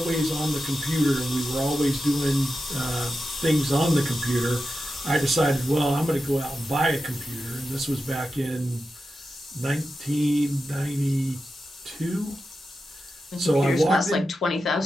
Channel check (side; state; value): both; normal; correlation 0.91